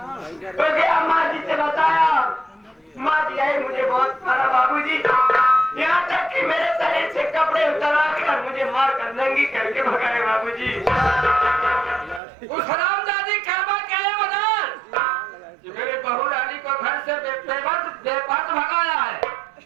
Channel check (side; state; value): left; drops out; at 12.2 s